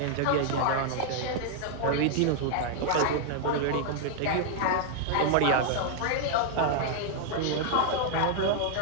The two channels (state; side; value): different; both; correlation 0.00